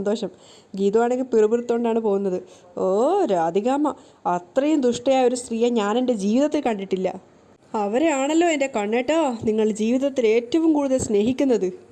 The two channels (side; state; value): both; identical; correlation 1.00